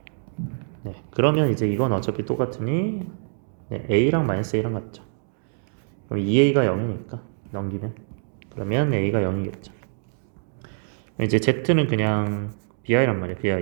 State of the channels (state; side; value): silent; left; digital silence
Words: 그러면 이제 이건 어차피 똑같으니 A랑 마이너스 A랑 같죠. 그럼 2A가 0이니까 넘기면 그러면 A가 0이겠죠. 이제 Z는 그냥 BI란 말이야.